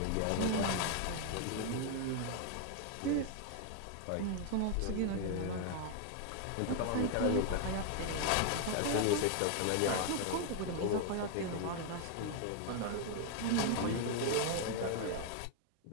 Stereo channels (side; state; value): both; different; correlation 0.00